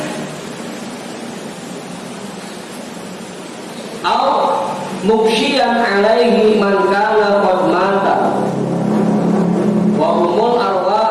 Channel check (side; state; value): both; identical; correlation 1.00